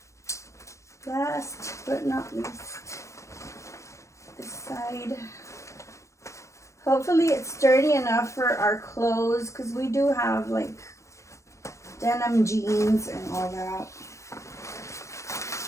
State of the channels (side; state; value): right; late; 0.15 ms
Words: last but not least, this side. Hopefully it's sturdy enough for our clothes, because we do have like denim jeans and all that.